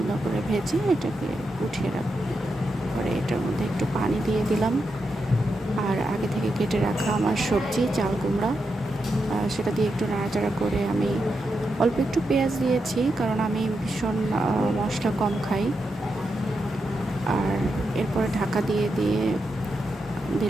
করে ভেজে এটাকে উঠিয়ে রাখবো। পরে এটার মধ্যে একটু পানি দিয়ে দিলাম। আর আগে থেকে কেটে রাখা আমার সবজি চাল কুমড়া, সেটা দিয়ে একটু নাড়াচাড়া করে আমি অল্প একটু পেঁয়াজ দিয়েছি, কারণ আমি ভীষণ মশলা কম খাই। আর এরপরে ঢাকা দিয়ে দিয়ে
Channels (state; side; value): normal; both; correlation 0.86